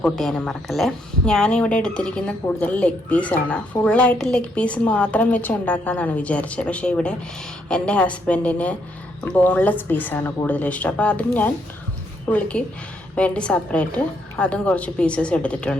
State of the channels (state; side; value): normal; both; correlation 0.74